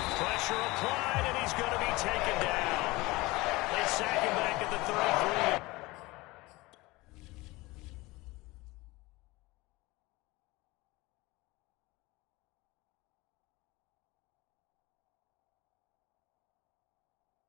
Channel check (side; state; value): right; quieter; 21.6 dB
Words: Pressure applied, and he's going to be taken down. They sack him back at the 33.